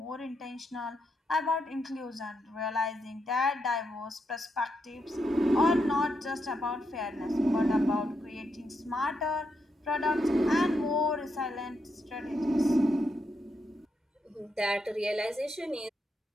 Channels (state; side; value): normal; both; correlation 0.81